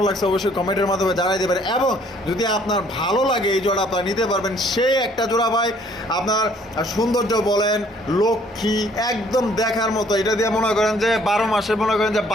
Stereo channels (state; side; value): normal; both; correlation 0.61